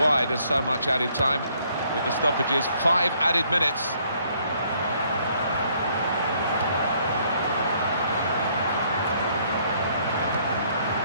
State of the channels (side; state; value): both; inverted; correlation -0.66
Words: there's so much added time with the stoppages. 5 added minutes.